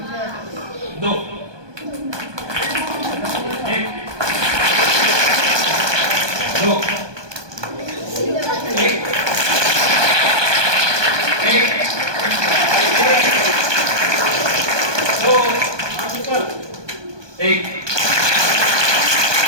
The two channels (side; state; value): left; late; 1.2 ms